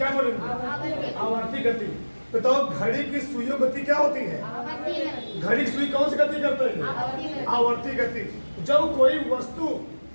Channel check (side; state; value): both; inverted; correlation -1.00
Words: बोलेंगे? आवर्ती गति। बताओ घड़ी की सुइयों गति क्या होती है? घड़ी की सुई कौन सी गति करते हैं? आवर्ती गति। जब कोई वस्तु